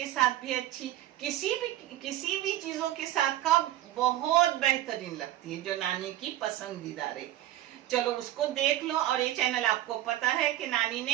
साथ भी अच्छी, किसी भी चीजों के साथ का बहुत बेहतरीन लगती है, जो नानी की पसंदीदा है। चलो उसको देख लो। और ये चैनल आपको पता है कि नानी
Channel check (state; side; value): quieter; left; 14.0 dB